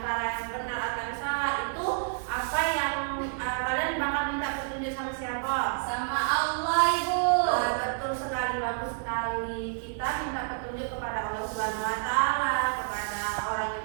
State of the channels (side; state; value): left; silent; digital silence